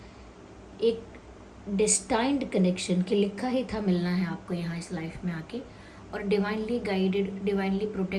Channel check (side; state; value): both; identical; correlation 1.00